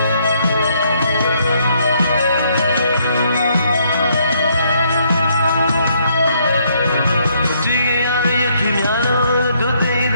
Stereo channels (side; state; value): both; inverted; correlation -0.70